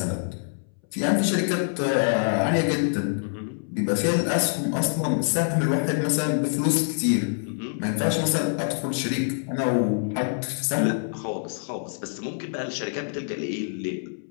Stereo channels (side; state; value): right; silent; 61 dB below the other